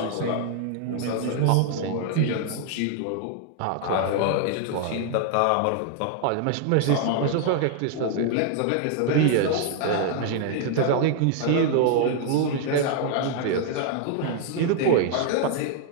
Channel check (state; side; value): different; both; correlation 0.00